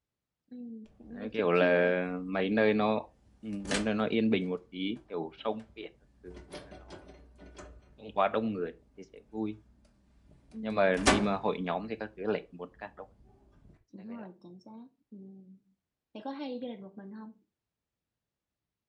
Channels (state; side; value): identical; both; correlation 1.00